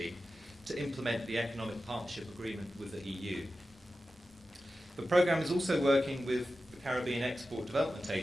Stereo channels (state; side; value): normal; both; correlation 0.93